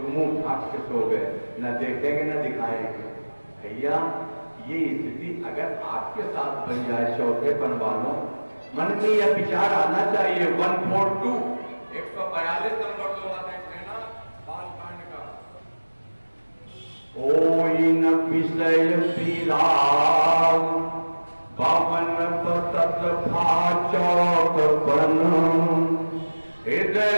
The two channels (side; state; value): both; inverted; correlation -1.00